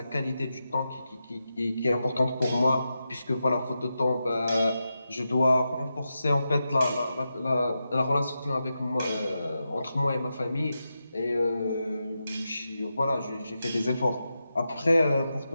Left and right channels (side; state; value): both; inverted; correlation -0.89